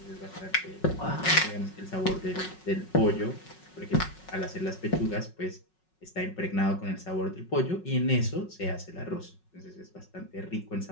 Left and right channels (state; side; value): late; right; 5.4 ms